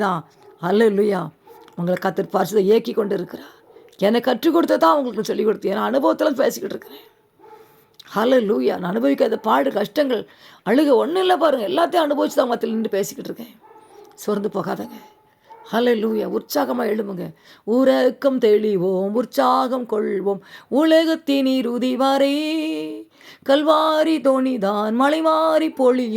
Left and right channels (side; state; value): both; identical; correlation 1.00